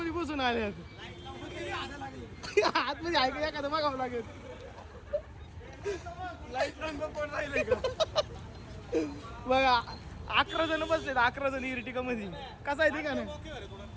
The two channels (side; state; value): both; identical; correlation 1.00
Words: बसून आल्यात. आतमध्ये ऐका एखादं बघावं लागेल. बघा 11 जण बसलेत. 11 जण इर्टिका मध्ये. कसा आहे ते का नाही.